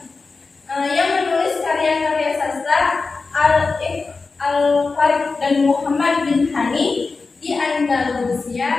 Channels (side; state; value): right; quieter; 4.1 dB